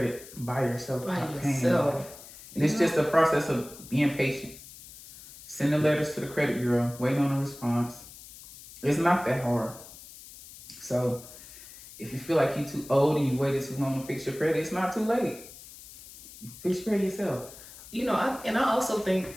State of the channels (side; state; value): left; noise; hiss, 17 dB below the sound